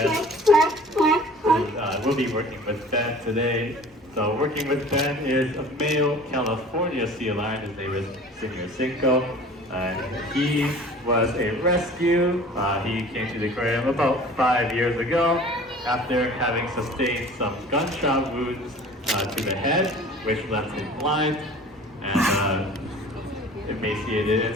We'll be working with Ben today. So working with Ben is a male California sea lion. His name is Senior Cinco. He was a rescue. He came to the aquarium about 5 years ago after having sustained some gunshot wounds to the head, which left him blind and emaciated.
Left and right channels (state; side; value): normal; both; correlation 0.45